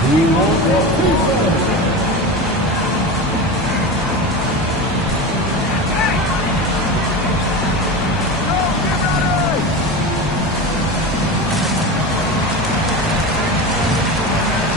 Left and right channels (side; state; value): both; normal; correlation 0.25